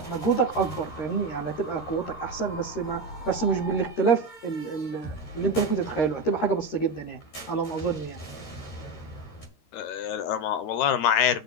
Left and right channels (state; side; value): late; right; 13 ms